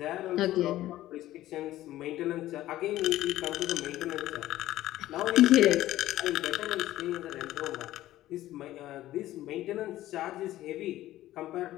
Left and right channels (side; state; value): right; quieter; 14.8 dB